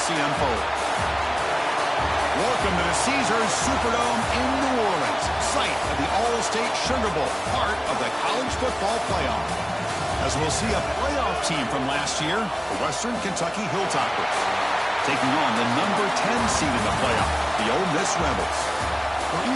unfold. Welcome to the Caesars Superdome in New Orleans, site of the All-State Sugar Bowl, part of the college football playoff. As we'll see a playoff team from last year, the Western Kentucky Hilltoppers, taking on the number 10 seed in the playoff, the Ole Miss Rebels. For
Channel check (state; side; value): identical; both; correlation 1.00